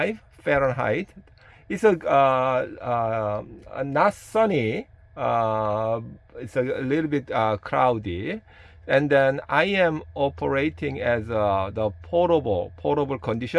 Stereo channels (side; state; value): both; identical; correlation 1.00